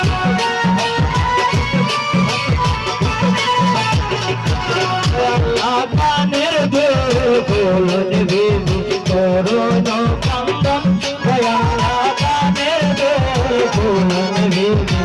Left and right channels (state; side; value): identical; both; correlation 1.00